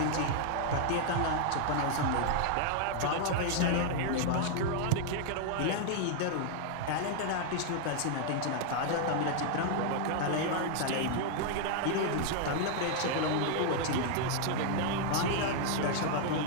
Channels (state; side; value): different; both; correlation 0.00